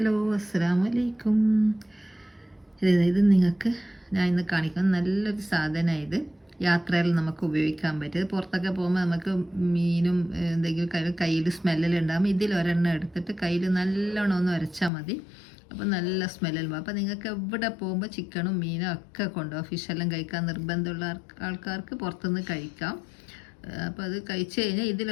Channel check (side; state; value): right; drops out; at 14.9 s